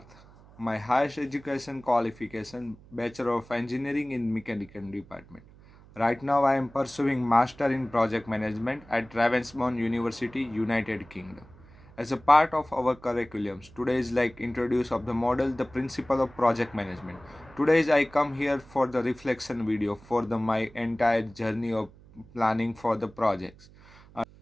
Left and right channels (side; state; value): right; noise; hum, 23 dB below the sound